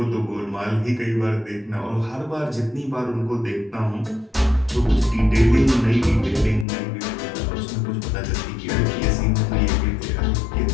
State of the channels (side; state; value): right; drops out; at 6.7 s